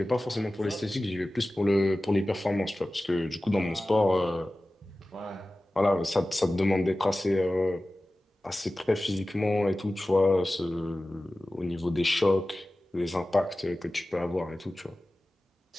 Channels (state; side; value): normal; both; correlation 0.96